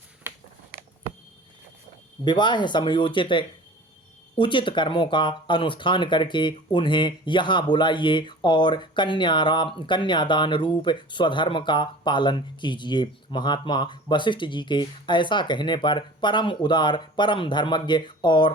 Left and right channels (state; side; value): normal; both; correlation 0.41